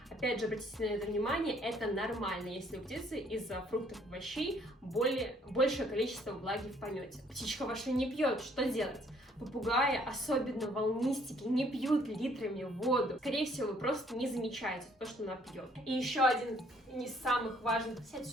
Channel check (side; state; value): both; normal; correlation 0.63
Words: Опять же, обратите на это внимание, это нормально, если у птицы из-за фруктов и овощей большее количество влаги в помете. Птичка ваша не пьет, что делать? Попугаи, особенно волнистики, не пьют литрами воду. Скорее всего, вы просто не замечаете то, что она пьет. И еще один из самых важных... Сядь